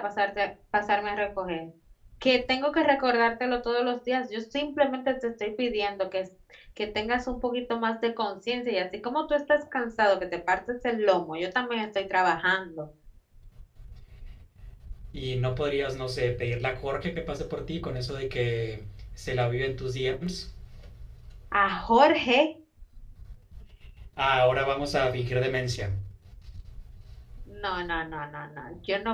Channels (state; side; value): identical; both; correlation 1.00